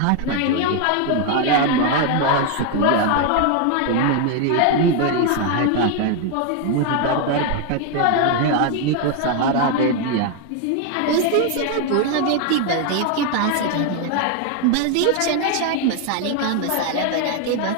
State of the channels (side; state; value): both; different; correlation 0.01